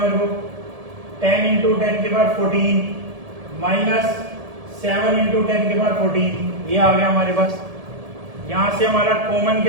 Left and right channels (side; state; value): left; late; 1.7 ms